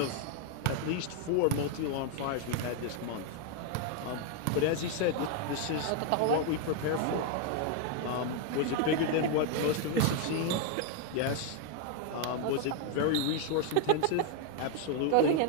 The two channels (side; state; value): both; different; correlation 0.01